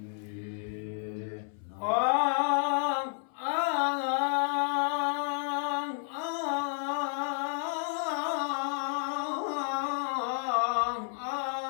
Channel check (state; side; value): silent; right; 57 dB below the other